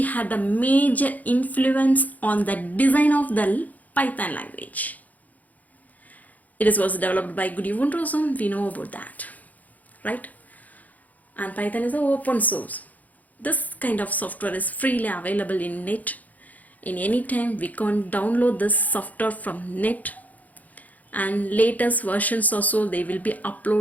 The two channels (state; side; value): late; right; 0.078 ms